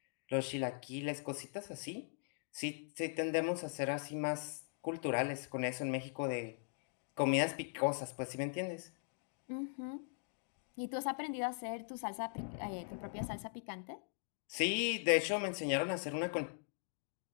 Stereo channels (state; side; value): silent; right; digital silence